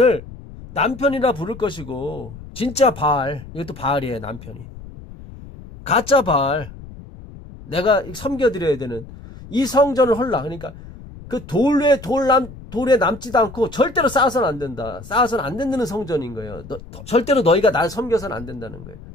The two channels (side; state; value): left; noise; rumble, 16 dB below the sound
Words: 남편이라 부를 것이고 진짜 바알, 이것도 바알이에요. 남편이 가짜 바알, 내가 섬겨드려야 되는 이 성전을 헐라. 그러니까 그 돌에 남지도 않고 절대로 쌓아서는 안 된다. 쌓아서는 안 된다는 성전인 거예요. 절대로 너희가 나를 섬겨서는 안 된다는 거예요.